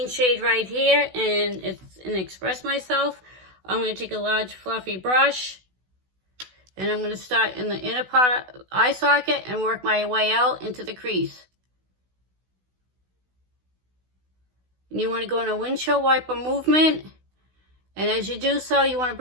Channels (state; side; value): late; left; 16 ms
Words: shade right here, and it's in Express Myself. I'm going to take a large fluffy brush, and I'm going to start in the inner part of eye socket and work my way out into the crease. And you want to go in a windshield wiper movement, and as you do so, you want to